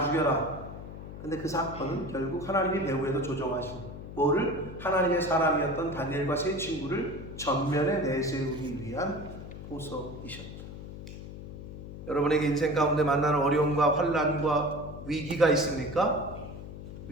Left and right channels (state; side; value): noise; left; hum, 11 dB below the sound